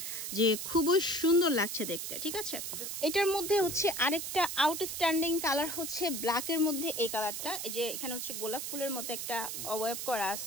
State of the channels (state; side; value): noise; right; hiss, 5 dB below the sound